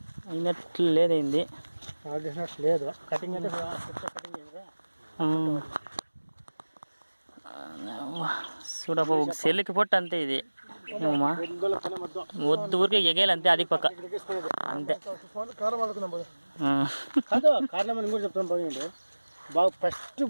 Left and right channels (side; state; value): both; inverted; correlation -1.00